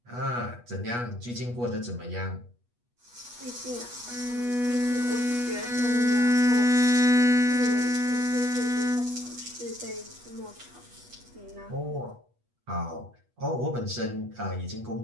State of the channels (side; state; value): left; late; 8.3 ms